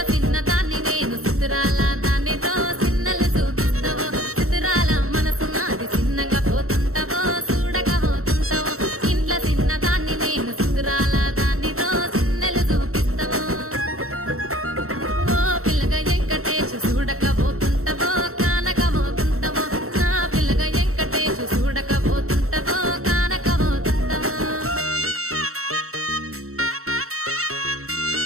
చిన్న దాన్ని నేను సుతురాల దానితో చిన్నలు చూపిస్తావో సుతురాల మనసు నాది చిన్నగా పోతుంటావో చూడక పోతుంటావో ఇంట్లో చిన్న దాన్ని నేను సుతురాల దానితో చిన్నలు చూపిస్తావో ఓ పిల్లగా వెంకటేశు చూడక పోతుంటావో కానక పోతుంటావో నా పిల్లగా వెంకటేశు చూడక పోతుంటావో కానక పోతుంటావో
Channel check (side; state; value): left; late; 0.63 ms